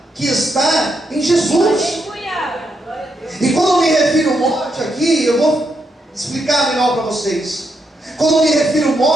que está em Jesus. E quando eu me refiro a morte aqui, eu vou explicar melhor para vocês. Quando eu me refiro a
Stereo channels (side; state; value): both; normal; correlation 0.80